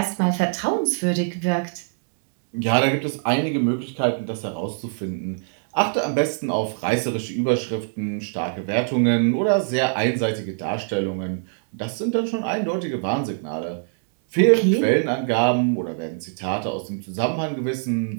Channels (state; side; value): silent; left; digital silence